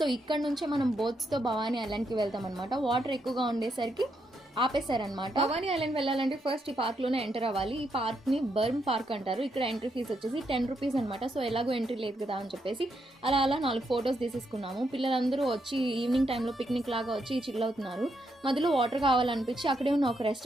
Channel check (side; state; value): both; normal; correlation 0.79